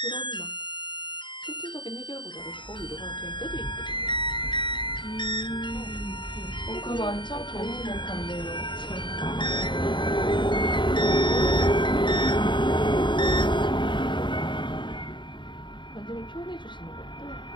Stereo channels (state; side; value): late; right; 0.23 ms